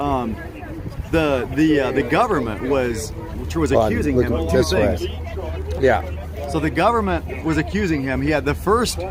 the government was accusing him of two this way. things. Yeah. So the government was accusing him. He had the first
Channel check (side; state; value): both; identical; correlation 1.00